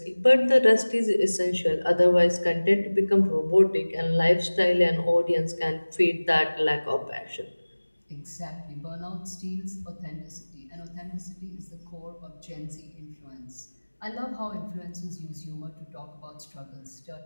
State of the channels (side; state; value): both; inverted; correlation -1.00